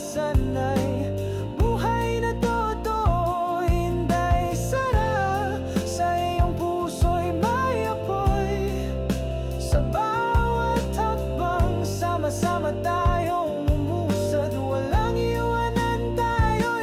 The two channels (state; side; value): identical; both; correlation 1.00